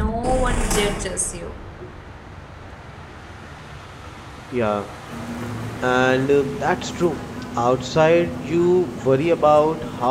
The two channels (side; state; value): both; identical; correlation 1.00